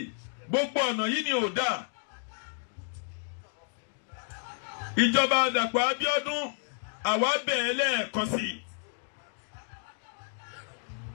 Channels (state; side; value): silent; right; 57 dB below the other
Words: gbogbo ọ̀nà yìí ni ò dá. Ìjọba Dàpọ̀ Abíọ́dún àwa bẹ̀ẹ́ lẹ́ẹ̀kan sí i.